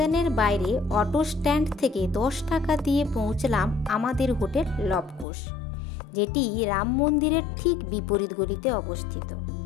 বাইরে অটো স্ট্যান্ড থেকে 10 টাকা দিয়ে পৌঁছলাম আমাদের হোটেল লবকুশ, যেটি রাম মন্দিরের ঠিক বিপরীত গলিতে অবস্থিত।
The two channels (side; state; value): right; drops out; at 5.2 s